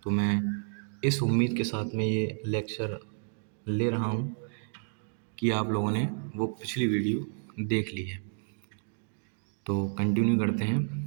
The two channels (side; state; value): left; silent; 57 dB below the other